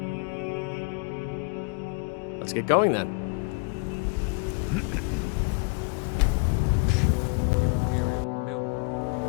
Let's get going then. Imperial milk.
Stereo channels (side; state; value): right; quieter; 32.3 dB